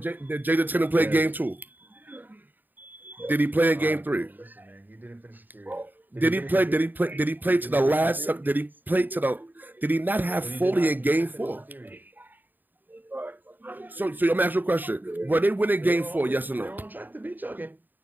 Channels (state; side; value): late; left; 0.089 ms